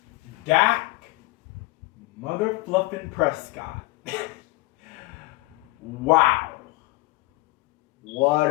Dak motherfluffin' Prescott. Wow. What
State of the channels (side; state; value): right; quieter; 21.9 dB